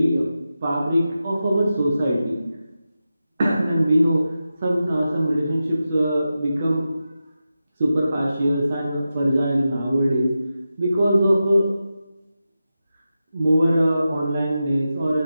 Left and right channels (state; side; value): inverted; both; correlation -0.91